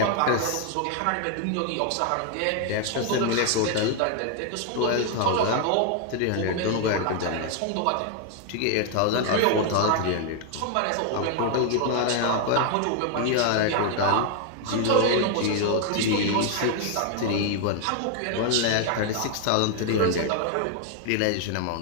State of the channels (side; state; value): both; different; correlation 0.00